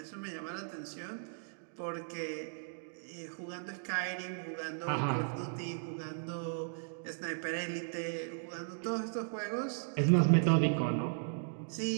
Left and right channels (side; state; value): left; silent; digital silence